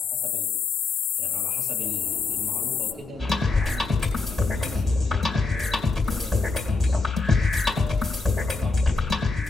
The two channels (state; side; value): quieter; right; 3.8 dB